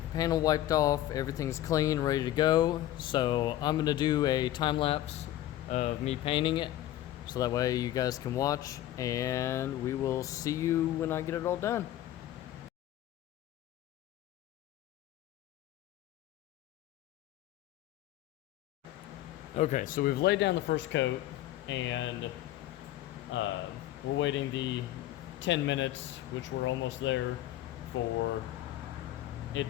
panel wiped off, everything's clean, ready to go. So I'm gonna do a time lapse of me painting it, so that way you guys can watch, and we will see you when I get it all done. Okay, so we've laid down the first coat, and we're waiting the 10 minutes, which we're almost there, for it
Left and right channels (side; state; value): right; quieter; 13.8 dB